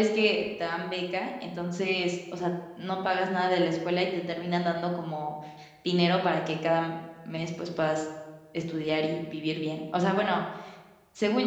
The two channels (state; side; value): identical; both; correlation 1.00